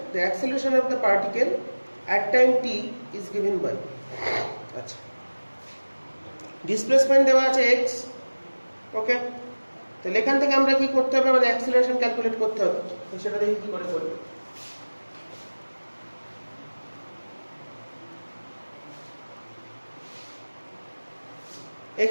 the acceleration of the particle at time t is given by আচ্ছা ডিসপ্লেসমেন্ট দেওয়া আছে x ওকে তাহলে এখান থেকে আমরা কি করতে হবে আমাদের অ্যাক্সিলারেশন ক্যালকুলেট করতে হবে তো সেটা দেখি কি করে করব x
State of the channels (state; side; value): inverted; both; correlation -1.00